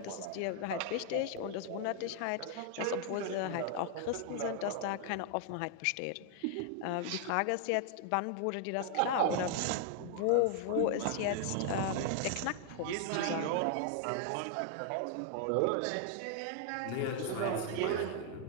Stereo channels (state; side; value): different; both; correlation 0.00